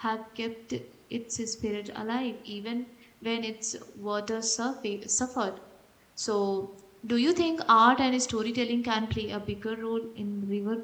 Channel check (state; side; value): identical; both; correlation 1.00